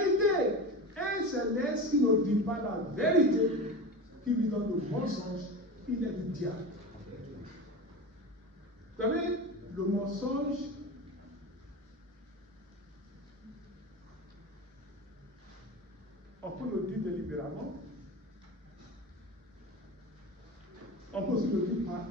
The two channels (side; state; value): both; normal; correlation 0.27